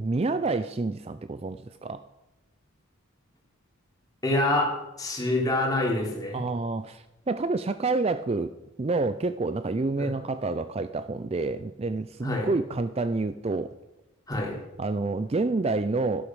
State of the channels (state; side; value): normal; both; correlation 0.49